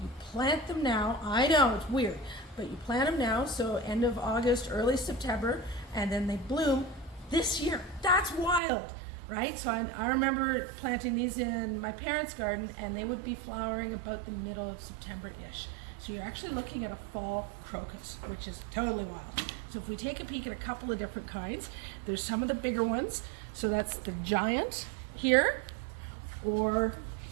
You plant them now. I know, it's weird, but you plant them now, so end of August, early September, and then they bloom this year. That's wild, right? So I remember planting these in my parents' garden, and they would be flowering about the middle of September-ish. So you're actually looking at a fall crocus, which is totally wild. So if we take a peek at a couple of different kinds, there's some of the bigger ones. So that's the giant here, or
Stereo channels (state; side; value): drops out; left; at 8.6 s